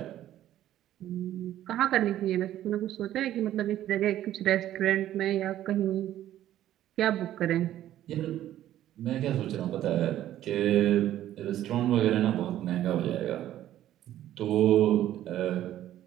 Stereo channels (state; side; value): quieter; left; 12.6 dB